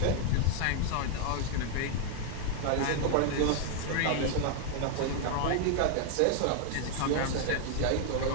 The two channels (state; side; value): different; both; correlation 0.00